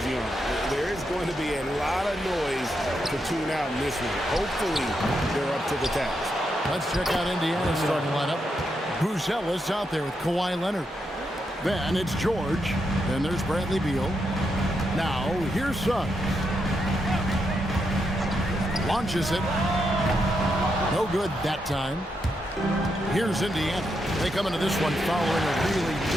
on them. There is going to be a lot of noise to tune out in this one. Hopefully, they're up to the task. Let's check out Indiana's starting lineup. Buzelis out there with Kawhi Leonard. Then it's George. Then there's Bradley Beal. Now, here's Suggs. Launches it. No good that time. Here's Indiana. They come into this one following a really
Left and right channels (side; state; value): both; normal; correlation 0.82